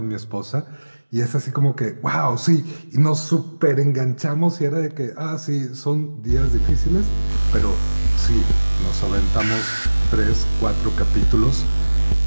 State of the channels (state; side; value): inverted; both; correlation -1.00